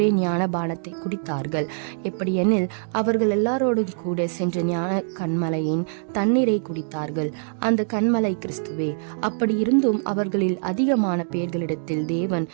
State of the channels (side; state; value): left; silent; digital silence